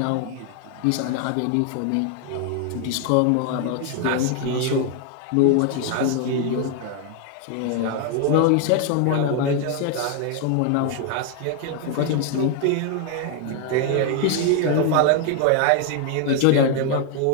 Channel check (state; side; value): different; both; correlation 0.00